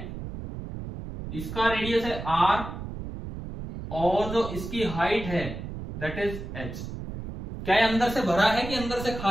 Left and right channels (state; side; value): noise; right; rumble, 8 dB below the sound